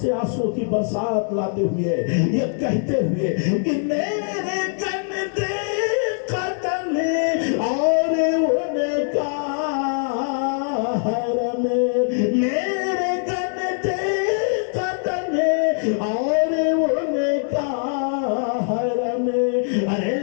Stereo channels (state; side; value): silent; right; digital silence